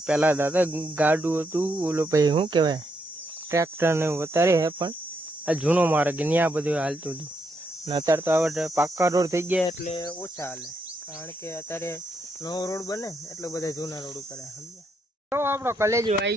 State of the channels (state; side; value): normal; both; correlation 0.79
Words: પહેલા દાદા ગાડું હતું, ઓલો ભાઈ શું કહેવાય ટ્રેક્ટર ને વધારે હે, પણ આ જૂનો માર્ગ ત્યાં બધું હાલતું હતું. અને અત્યારે તો આ પાક્કા રોડ થઈ ગયા એટલે ઓછા હાલે, કારણ કે અત્યારે નવો રોડ બને એટલે બધા જૂના રોડ ઉપર સમજ્યા. તો આપણો કલેજો